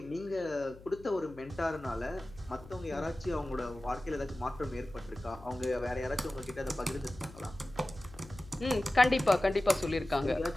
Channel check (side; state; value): left; noise; hum, 19 dB below the sound